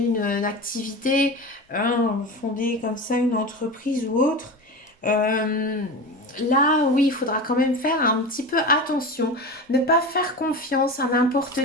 activité, fonder comme ça une entreprise ou autre. Euh, Là, oui, il faudra quand même faire un petit peu attention. Ne pas faire confiance à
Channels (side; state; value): both; normal; correlation 0.27